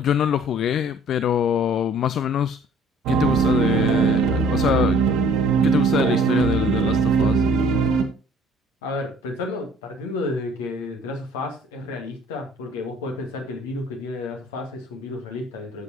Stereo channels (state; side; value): normal; both; correlation 0.54